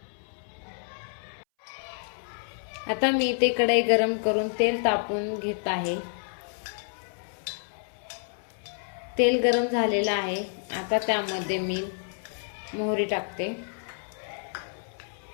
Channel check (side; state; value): right; silent; 59 dB below the other